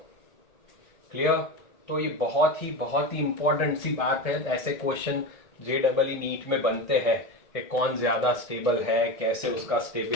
क्लियर? तो ये बहुत ही इंपॉर्टेंट सी बात है। ऐसे क्वेश्चन JEE नीट में बनते हैं कि कौन ज्यादा स्टेबल है, कैसे उसका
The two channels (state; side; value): late; right; 1.6 ms